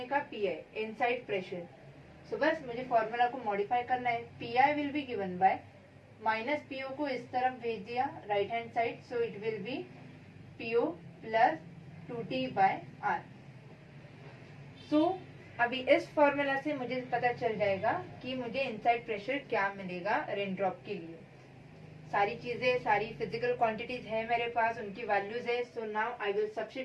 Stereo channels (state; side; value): identical; both; correlation 1.00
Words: का PI, इनसाइड प्रेशर। सो बस मुझे फॉर्मूला को मॉडिफाई करना है। PI will be given by minus PO को इस तरफ भेज दिया right hand side, so it will be PO plus 2T by R। So अभी इस फॉर्मूला से मुझे पता चल जाएगा कि मुझे इनसाइड प्रेशर क्या मिलेगा रेन ड्रॉप के लिए। सारी चीजें, सारी फिजिकल क्वांटिटीज है मेरे पास, उनकी वैल्यूज है। So now I will